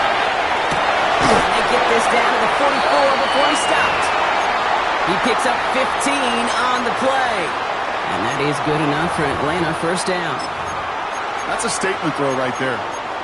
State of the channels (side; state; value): both; identical; correlation 1.00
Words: And they get this down to the 44 before he stopped. He picks up 15 on the play. And that is good enough for Atlanta. First down. That's a statement throw right there.